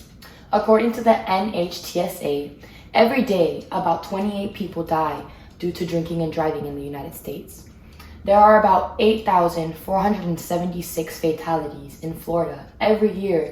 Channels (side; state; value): both; identical; correlation 1.00